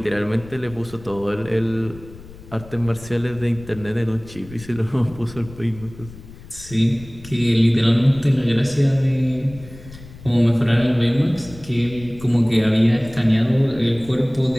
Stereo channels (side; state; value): left; noise; rumble, 18 dB below the sound